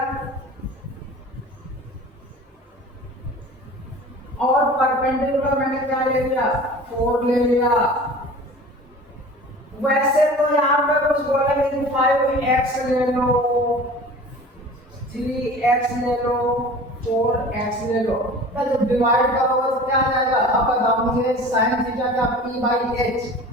और परपेंडिकुलर मैंने क्या ले लिया 4 ले लिया। वैसे तो यहाँ पे कुछ बोलेंगे कि 5x ले लो, 3x ले लो, 4x ले लो, तो जब डिवाइड करोगे तो क्या आ जाएगा, अब बताओ मुझे sin थीटा का p बाई h,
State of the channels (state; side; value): normal; both; correlation 0.41